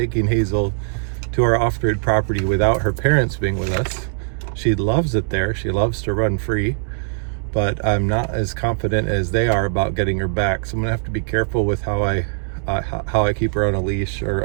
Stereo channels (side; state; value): left; silent; 65 dB below the other